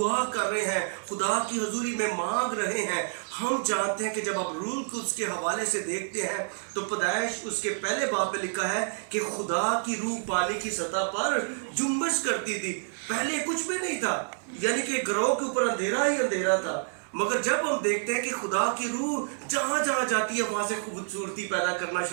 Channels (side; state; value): left; silent; 59 dB below the other